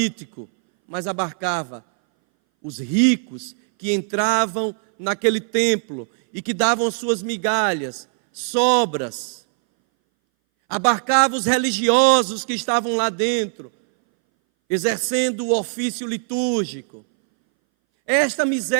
mas abarcava os ricos que entravam naquele templo e que davam suas migalhas, sobras. Abarcava os religiosos que estavam lá dentro, exercendo o ofício litúrgico. Esta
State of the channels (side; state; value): left; silent; 61 dB below the other